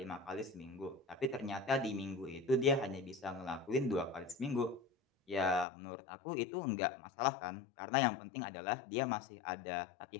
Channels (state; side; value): drops out; right; at 5.7 s